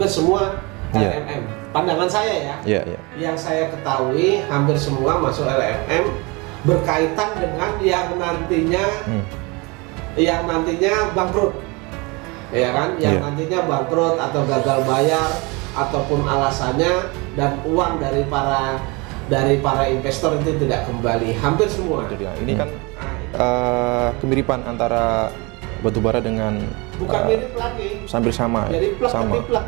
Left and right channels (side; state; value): left; quieter; 27.1 dB